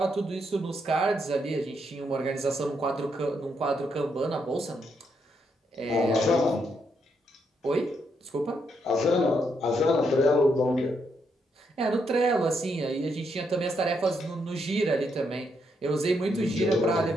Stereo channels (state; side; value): normal; both; correlation 0.78